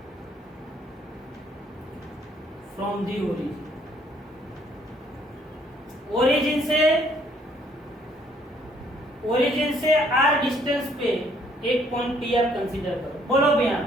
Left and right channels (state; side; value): normal; both; correlation 0.64